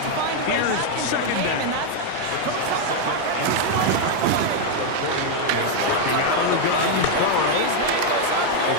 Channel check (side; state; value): both; different; correlation 0.01